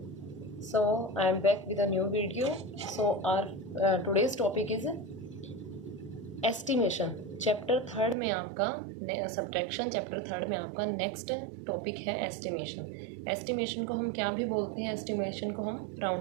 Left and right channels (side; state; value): left; drops out; at 8.2 s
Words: So I am back with a new video. So our today's topic is estimation. Chapter third में आपका subtraction chapter third में आपका next topic है estimation. Estimation को हम क्या भी बोलते हैं, एस्टिमेशन को हम